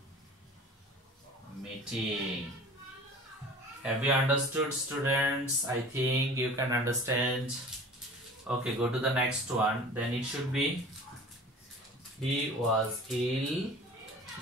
meeting. Have you understood, students? I think you can understand. Okay, go to the next one. Then it should be he was ill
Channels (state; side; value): normal; both; correlation 0.41